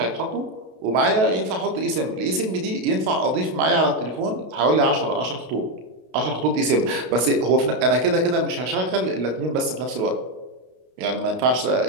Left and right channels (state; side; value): late; left; 32 ms